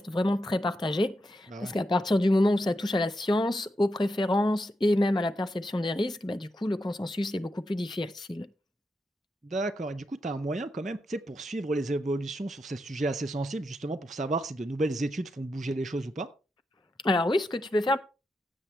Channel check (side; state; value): both; normal; correlation 0.85